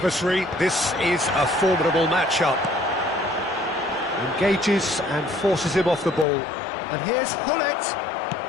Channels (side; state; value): right; drops out; at 6.2 s